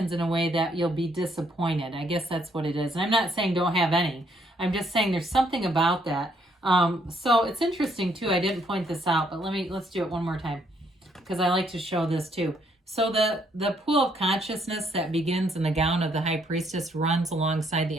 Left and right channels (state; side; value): normal; both; correlation 0.70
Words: in a way that you'll be disappointed. I guess that's what it is. And I'm not saying don't have any. I'm just saying there's something about that. So it's interesting too. I didn't point this out, but let's do it one more time because I like to show this too. So the pool of consciousness that begins in the gown of the High Priestess runs alongside